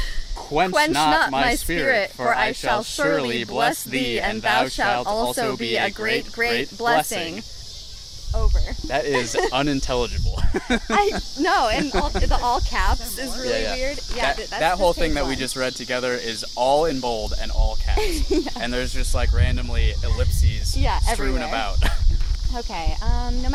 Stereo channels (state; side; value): identical; both; correlation 1.00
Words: Quench not my spirit, for I shall surely bless thee, and thou shalt also be a great, great blessing. Over. That is unintelligible. No, and the all caps is really weird. Yeah, that whole thing that we just read together is all in bold and all caps. Yeah. And there's just like randomly ellipses strewn everywhere. about. Okay, no